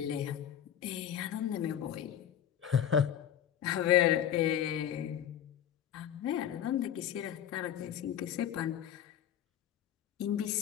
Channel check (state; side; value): quieter; right; 10.2 dB